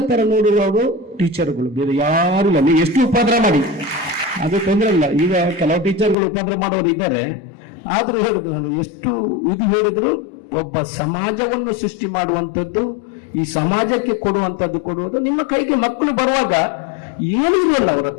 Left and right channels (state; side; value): drops out; right; at 6.2 s